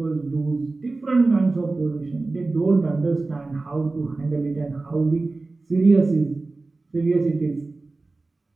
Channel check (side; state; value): left; quieter; 3.4 dB